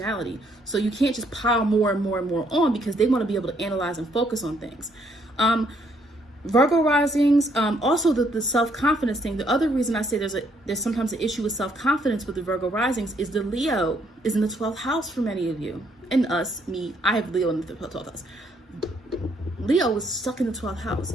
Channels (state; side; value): normal; both; correlation 0.69